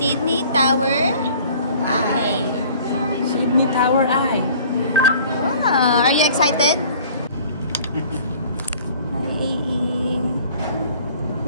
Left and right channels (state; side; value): inverted; both; correlation -0.51